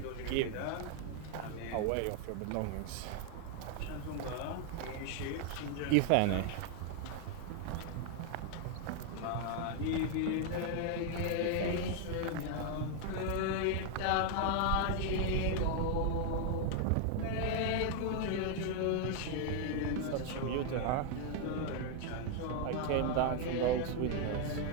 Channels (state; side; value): different; both; correlation 0.00